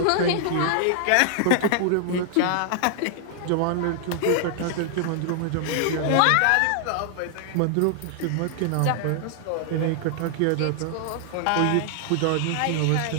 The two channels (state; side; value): different; both; correlation 0.00